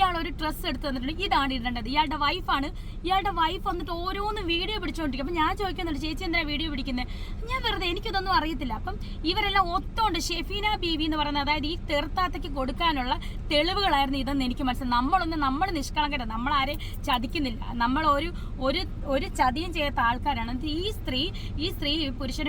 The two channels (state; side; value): identical; both; correlation 1.00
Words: ഒരു ഡ്രസ്സ് എടുത്ത് തന്നിട്ടുണ്ട്, ഇതാണ് ഇടേണ്ടത്. ഇയാളുടെ വൈഫ് വന്നിട്ട് ഓരോന്നും വീഡിയോ പിടിച്ചുകൊണ്ടിരിക്കും. അപ്പം ഞാൻ ചോദിക്കുന്നുണ്ട് ചേച്ചി എന്താ വീഡിയോ പിടിക്കുന്നത്? ഞാൻ വെറുതെ, എനിക്കിതൊന്നും അറിയത്തില്ല. അപ്പം ഇവരെല്ലാം ഒത്തോണ്ട് ഷെഫീന ബീവി എന്ന് പറയുന്നത്, അതായത് ഈ തെറുത്താത്തയ്ക്ക് കൊടുക്കാനുള്ള തെളിവുകളായിരുന്നു ഇതെന്ന് എനിക്ക് മനസ്സിലായി. നമ്മൾ നിഷ്കളങ്കത, നമ്മളാരെ ചതിക്കുന്നില്ല, നമ്മൾ ഒരു ചതിയും ചെയ്യാത്ത ആൾക്കാരാണ്. ഈ സ്ത്രീ